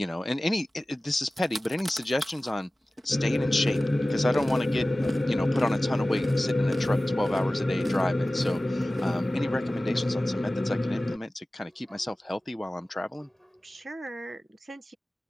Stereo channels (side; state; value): both; normal; correlation 0.97